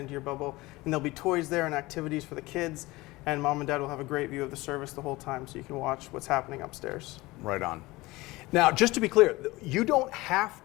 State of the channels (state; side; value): quieter; right; 20.7 dB